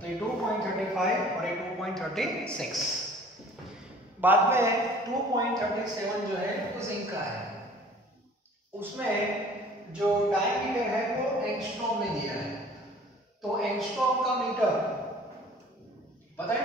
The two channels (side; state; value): both; normal; correlation 0.49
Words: तो ये 2.35 और ये 2.36। बाद में 2.37 जो है वो जिंक का है, उसमें जो डायमीटर है वो एंगस्ट्रॉम में दिया है। तो एंगस्ट्रॉम का मीटर पता है